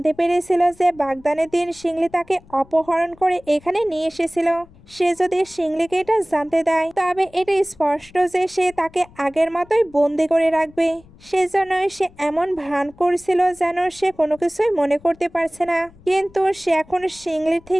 পেরেছিল যে বাগদানের দিন শিংলি তাকে অপহরণ করে এখানে নিয়ে এসেছিল। সে যদি শিংলিকে এটা জানতে দেয় তবে এটা স্পষ্ট যে সে তাকে আগের মতোই বন্দি করে রাখবে। সেজন্যই সে এমন ভান করছিল যেন সে কোনো কিছুই মনে করতে পারছে না। কিন্তু সে এখন শিংলির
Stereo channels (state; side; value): noise; left; rumble, 25 dB below the sound